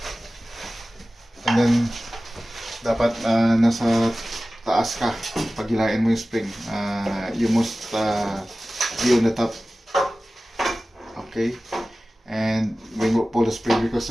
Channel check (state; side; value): normal; both; correlation 0.96